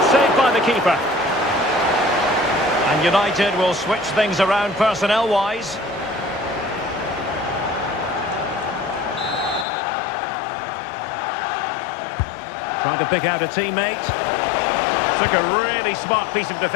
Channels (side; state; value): right; drops out; at 9.7 s